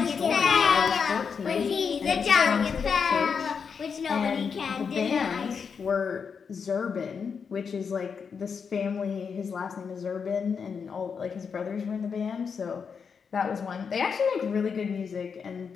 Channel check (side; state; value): right; quieter; 6.1 dB